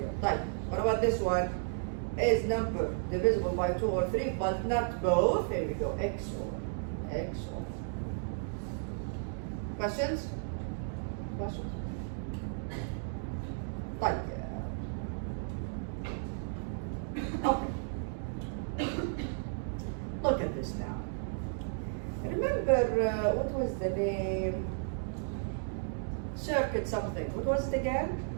Right. What about this one? Is number divisible by 2 or 3, but not both? Here we go. XOR. XOR. Questions? Questions? Right. Okay. Look at this now. Remember, what was the name? Circuit something. What was it again?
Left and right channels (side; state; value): left; silent; digital silence